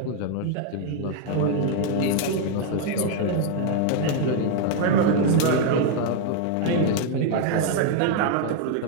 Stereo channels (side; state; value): both; different; correlation 0.00